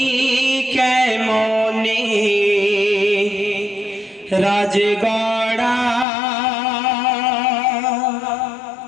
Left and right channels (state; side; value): drops out; right; at 6.1 s